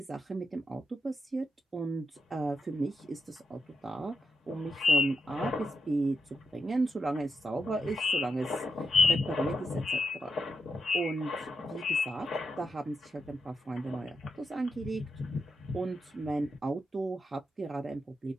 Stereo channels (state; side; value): normal; both; correlation 0.84